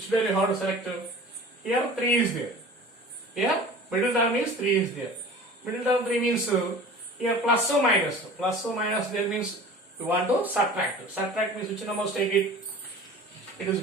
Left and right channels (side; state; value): both; normal; correlation 0.41